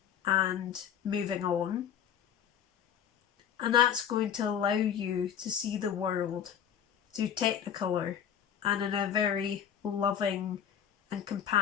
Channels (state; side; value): quieter; right; 9.1 dB